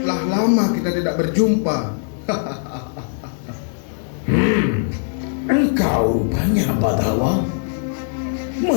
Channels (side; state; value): right; silent; 61 dB below the other